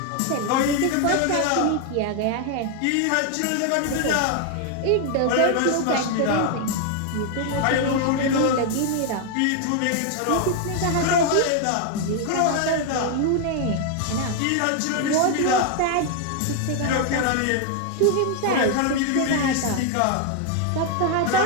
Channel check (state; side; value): different; both; correlation 0.00